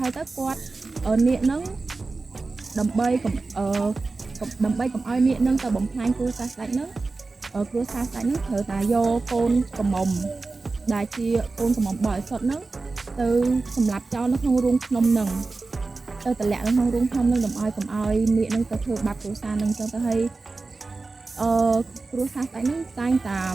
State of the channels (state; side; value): quieter; left; 3.7 dB